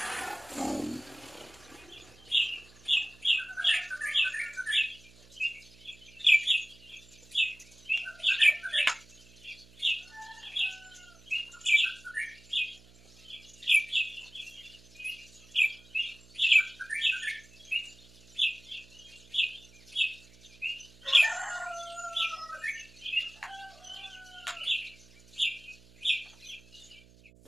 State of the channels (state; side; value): noise; right; hum, 25 dB below the sound